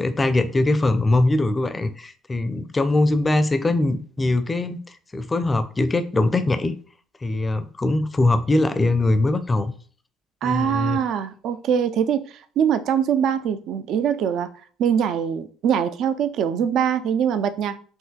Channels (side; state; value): both; normal; correlation 0.77